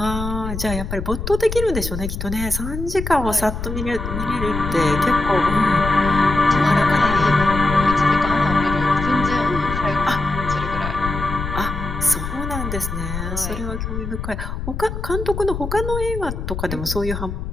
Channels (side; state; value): left; noise; rumble, 6 dB below the sound